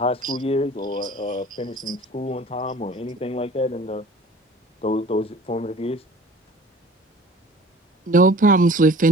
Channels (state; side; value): normal; both; correlation 0.46